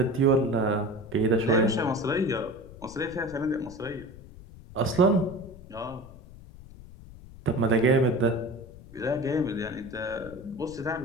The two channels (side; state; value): left; noise; rumble, 18 dB below the sound